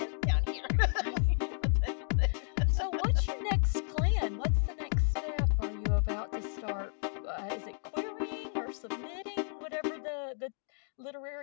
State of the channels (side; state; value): right; silent; digital silence